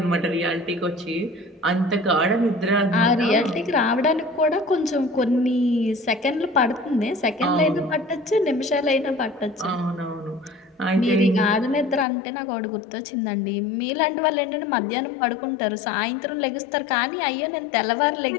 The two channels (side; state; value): right; drops out; at 12.1 s